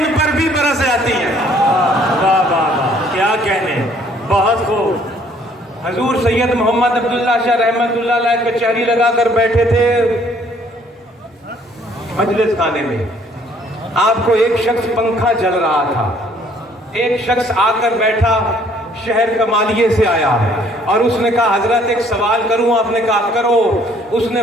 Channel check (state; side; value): normal; both; correlation 0.61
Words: پر بھی برس جاتی ہیں. واہ واہ واہ، کیا کہنے، بہت خوب. حضور سید محمد عبداللہ شاہ رحمت اللہ علیہ کچہری لگا کر بیٹھے تھے مجلس خانے میں. آپ کو ایک شخص پنکھا جل رہا تھا. ایک شخص آ کر بیٹھا، شہر کمالیے سے آیا، اور اس نے کہا حضرت ایک سوال کروں؟ آپ نے کہا کرو. اس نے